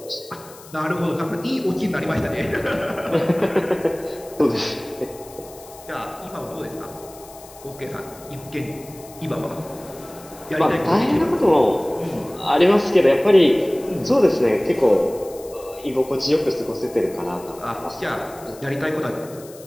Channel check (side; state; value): left; noise; hiss, 21 dB below the sound